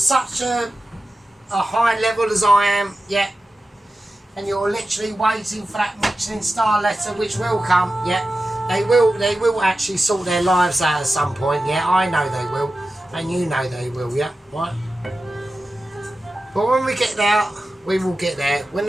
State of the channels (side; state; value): both; normal; correlation 0.93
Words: a high level as I am, yeah, and you're literally waiting for that Michelin star letter, which will come, yeah, they will actually sort their lives out at some point, yeah, I know they will, and you know they will, yeah, right? But when we get there, we will get there. When